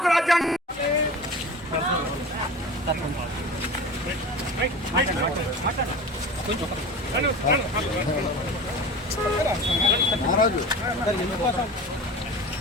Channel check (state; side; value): normal; both; correlation 0.34